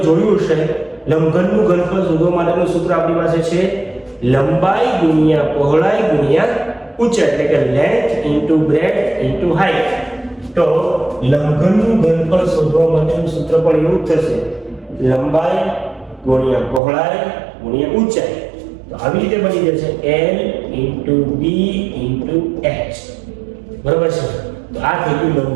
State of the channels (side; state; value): left; drops out; at 16.8 s